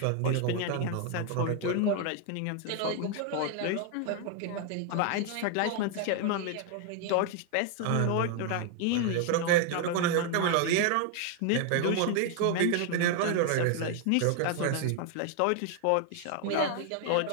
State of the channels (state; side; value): different; both; correlation 0.00